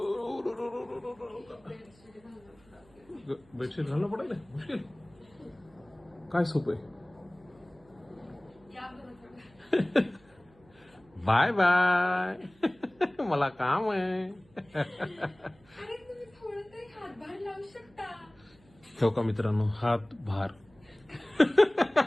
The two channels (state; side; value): noise; right; hum, 29 dB below the sound